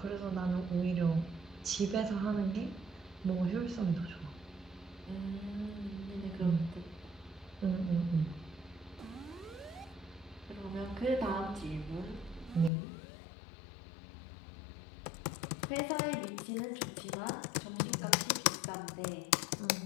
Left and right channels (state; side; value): drops out; right; at 12.7 s